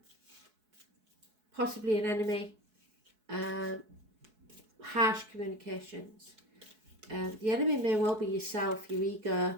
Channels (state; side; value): late; left; 4.7 ms